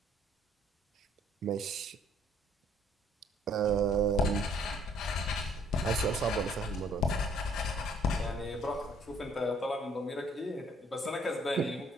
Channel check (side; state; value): both; normal; correlation 0.62